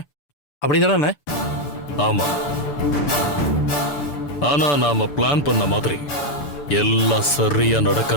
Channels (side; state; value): right; late; 6.9 ms